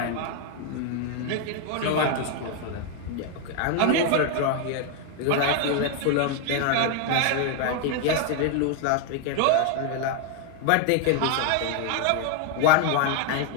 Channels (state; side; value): different; both; correlation 0.01